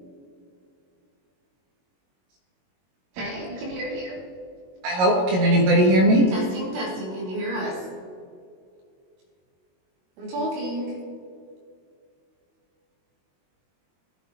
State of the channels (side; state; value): left; late; 22 ms